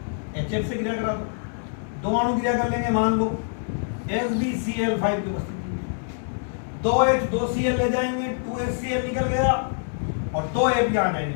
HF से क्रिया करा दो, दो अणु क्रिया कर लेंगे, मान लो SbCl5 की उपस्थिति, 2H 2Cl ले जाएंगे, 2HCl निकल गया और 2F यहां जाएंगे,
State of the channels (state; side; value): silent; right; digital silence